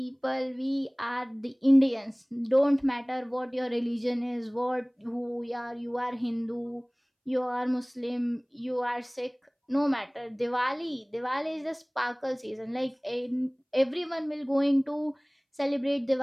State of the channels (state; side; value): identical; both; correlation 1.00